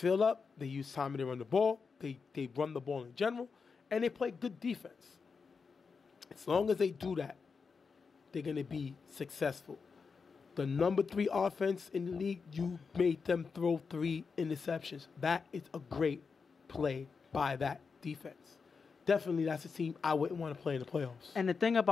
up. They use Tommy to run the ball. They run the ball in general. And they play good defense. As long as they do that, they're going to be successful. The number 3 offense in the league, you made them throw 3 interceptions. That is a great play by that defense. Definitely, that's a team I wouldn't want to play in the playoffs. And the thing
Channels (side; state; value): right; quieter; 5.2 dB